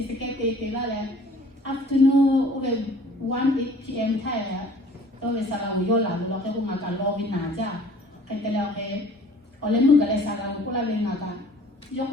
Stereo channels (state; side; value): normal; both; correlation 0.51